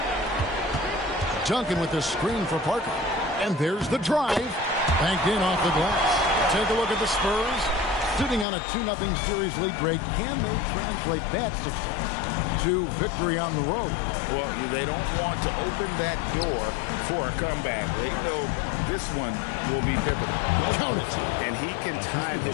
Duncan with the screen for Parker. And there's the drive. Banked in off the glass. Take a look at the Spurs. Sitting on a 2-0 series lead break. Can they translate that success to victory on the road? Well, they don't want to open that door for a comeback. They know this one will be pivotal. Count it. And he can time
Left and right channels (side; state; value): right; drops out; at 8.5 s